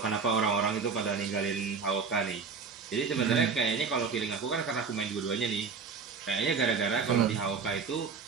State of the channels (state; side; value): quieter; left; 5.5 dB